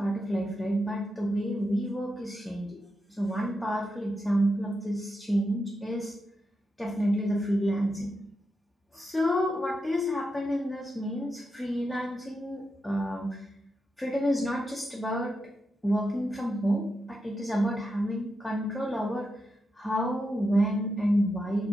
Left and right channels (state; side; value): normal; both; correlation 0.86